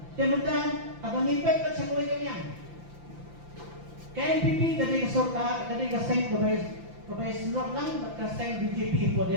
sementara abang ipet kat sa kulay kanyang KNPP dari sorta dari kaseng kabay slot lang kaseng BJP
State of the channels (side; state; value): left; late; 5.9 ms